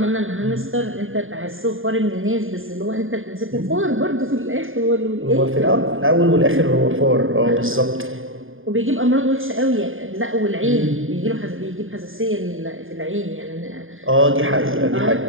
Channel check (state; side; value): late; left; 0.59 ms